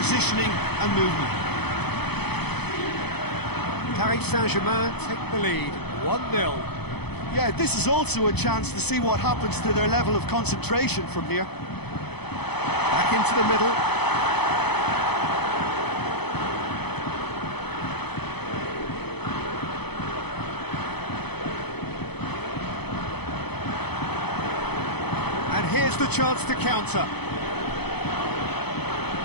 and movement. Paris Saint-Germain take the lead, 1-0. Yeah, this is also a chance to see what happens to their level of concentration from here. Back into the middle. Here's the chance to counter.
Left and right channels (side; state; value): right; late; 0.98 ms